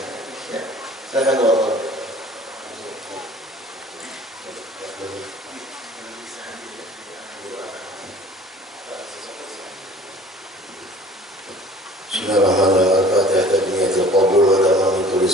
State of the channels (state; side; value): normal; both; correlation 0.48